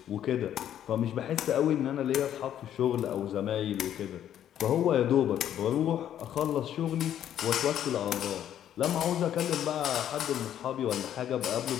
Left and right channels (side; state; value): right; quieter; 10.6 dB